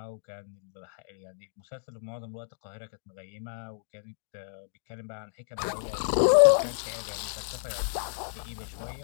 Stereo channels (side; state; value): right; silent; digital silence